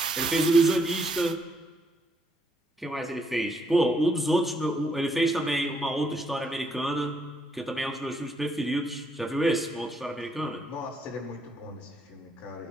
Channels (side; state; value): both; normal; correlation 0.74